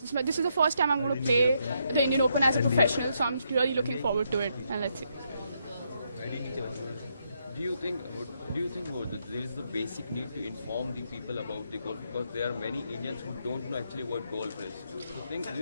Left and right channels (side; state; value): both; inverted; correlation -0.77